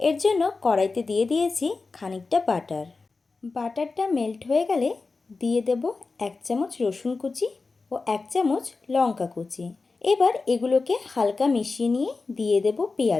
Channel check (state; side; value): quieter; right; 4.0 dB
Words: জন্য কড়াইতে দিয়ে দিয়েছি খানিকটা বাটার। বাটারটা মেল্ট হয়ে গেলে দিয়ে দেব 1 চামচ রসুন কুচি ও 1 চামচ লঙ্কা কুচি। এবার এগুলোকে হালকা মিশিয়ে নিয়ে দিয়ে দেব